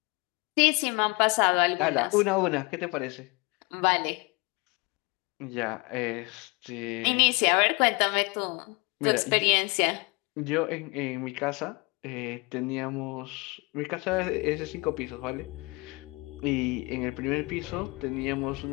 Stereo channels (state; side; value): quieter; right; 27.4 dB